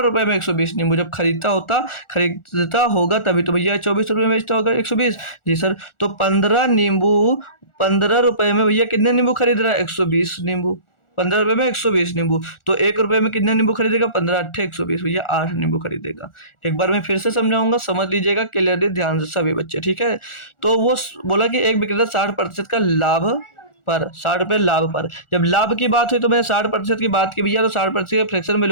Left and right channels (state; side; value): late; right; 1.4 ms